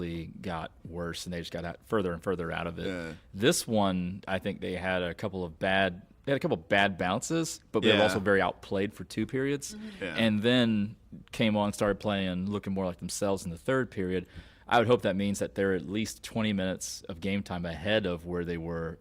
got worse, and they just got further and further out of it. Yeah. This one, I think they had a couple of bad bounces, but they were also very outplayed for 2 periods, and then came on and started playing, looking more like themselves in the 3rd period. I would hope that means that they're at least 20 minutes of game time ahead of where they were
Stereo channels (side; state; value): both; identical; correlation 1.00